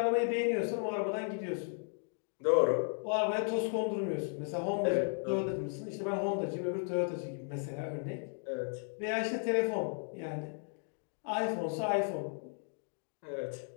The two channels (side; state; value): right; silent; 54 dB below the other